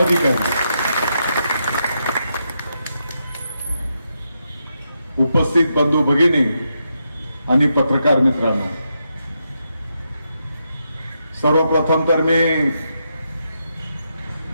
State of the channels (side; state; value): both; inverted; correlation -0.83